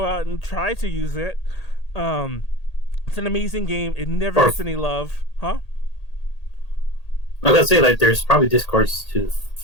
out and try to use it. It's an amazing game. It never gets any love, huh? I gotta say, like, there's probably Discords to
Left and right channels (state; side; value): late; right; 1.8 ms